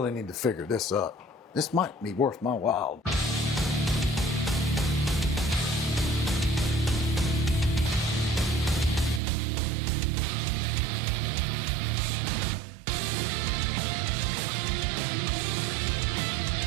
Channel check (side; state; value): left; drops out; at 9.2 s